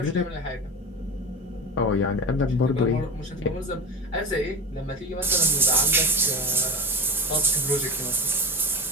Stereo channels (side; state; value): both; normal; correlation 0.26